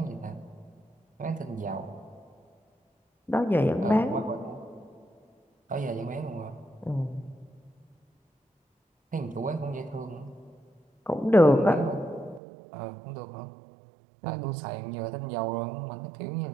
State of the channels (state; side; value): drops out; left; at 12.4 s